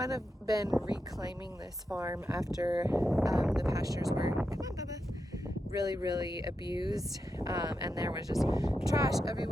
of been reclaiming this farm after the pastures were, come on Bubba, really abused, and there was just trash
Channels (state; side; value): normal; both; correlation 0.87